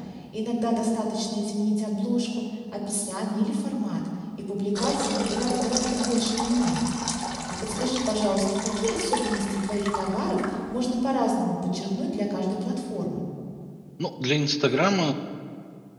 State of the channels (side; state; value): both; identical; correlation 1.00